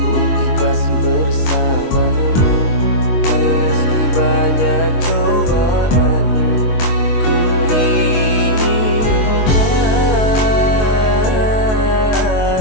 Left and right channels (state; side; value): late; right; 23 ms